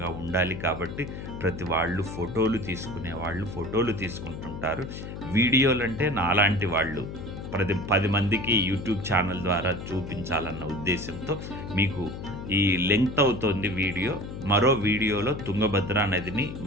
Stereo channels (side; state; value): left; noise; hum, 9 dB below the sound